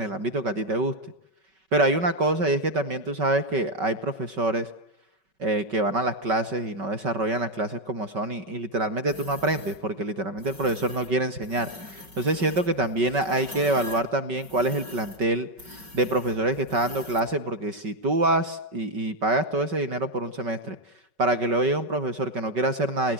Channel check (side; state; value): left; late; 5.3 ms